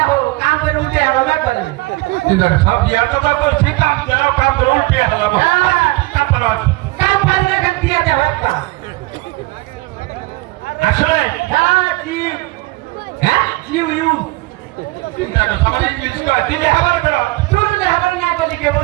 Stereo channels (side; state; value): left; quieter; 22.1 dB